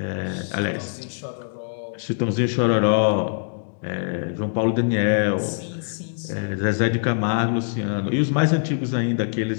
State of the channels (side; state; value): right; silent; digital silence